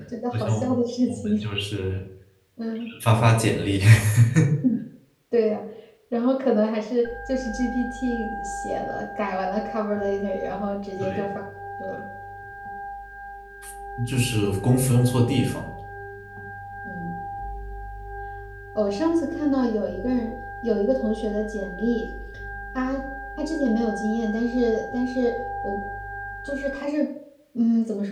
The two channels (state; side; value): identical; both; correlation 1.00